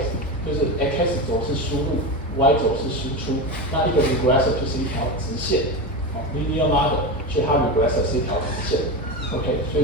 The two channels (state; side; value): normal; both; correlation 0.19